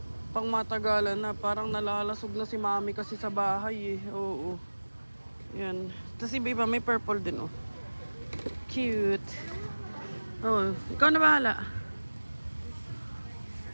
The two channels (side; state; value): both; inverted; correlation -1.00